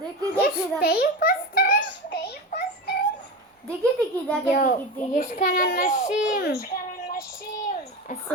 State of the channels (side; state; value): both; normal; correlation 0.23